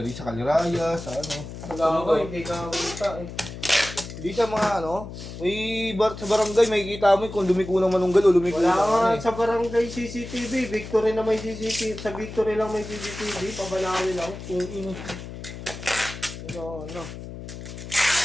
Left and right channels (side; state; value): left; noise; hum, 11 dB below the sound